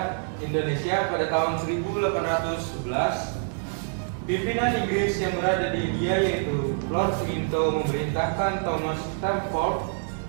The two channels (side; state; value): left; silent; digital silence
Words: Indonesia pada tahun 1811, pimpinan Inggris yang berada di India yaitu Lord Minto memerintahkan Thomas Stamford